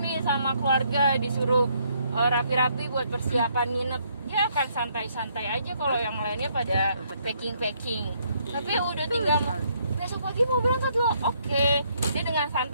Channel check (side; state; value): both; inverted; correlation -0.70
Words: sama keluarga, disuruh rapi-rapi buat persiapan nginep, dia akan santai-santai aja kalau yang lainnya pada packing. Tapi udah tinggal besok pagi mau berangkat loh, oke. Dia dengan